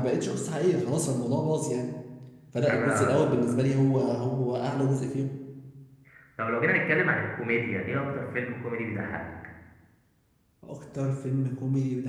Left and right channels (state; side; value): identical; both; correlation 1.00